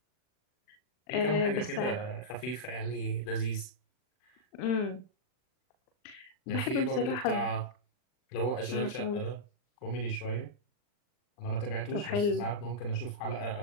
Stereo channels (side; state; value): right; late; 39 ms